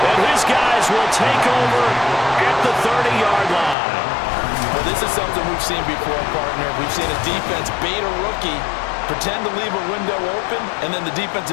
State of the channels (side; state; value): right; drops out; at 3.8 s